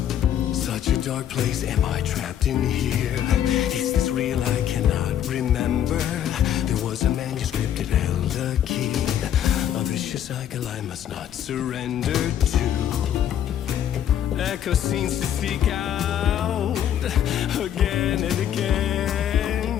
Such a dark place, am I trapped in here? Is this real? I cannot remember. There was a manuscript, it held a key. A vicious cycle I must not surrender to. Echo scenes to seek out again and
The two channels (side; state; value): right; quieter; 10.3 dB